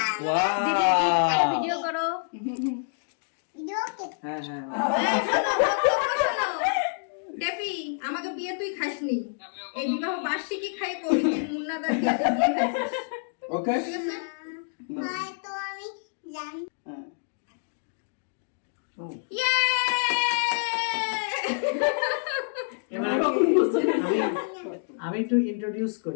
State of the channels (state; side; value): silent; right; digital silence